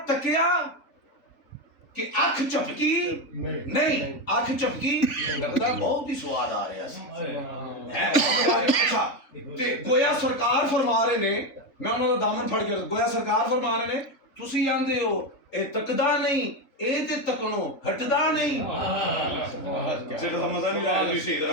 ਤੱਕਿਆ ਕਿ ਅੱਖ ਝਪਕੀ ਨਹੀਂ, ਅੱਖ ਝਪਕੀ ਲੱਗਦਾ ਬਹੁਤ ਹੀ ਸਵਾਦ ਆ ਰਿਹਾ ਸੀ। ਅੱਛਾ ਤੇ ਗੋਇਆ ਸਰਕਾਰ ਫਰਮਾ ਰਹੇ ਨੇ, ਮੈਂ ਉਹਨਾਂ ਦਾ ਦਾਮਨ ਫੜ ਕੇ ਗੋਇਆ ਸਰਕਾਰ ਫਰਮਾ ਰਹੇ ਨੇ ਤੁਸੀਂ ਆਂਦੇ ਹੋ ਇਹ ਤੱਕਦਾ ਨਹੀਂ ਇਹ ਤੇ ਤੱਕਣੋਂ ਹਟਦਾ ਨਹੀਂ। ਸਿਰ ਦਾ ਮਜ਼ਾ ਨਹੀਂ ਆਇਆ, ਤੁਸੀਂ ਸਹੀ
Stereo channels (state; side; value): late; right; 3.4 ms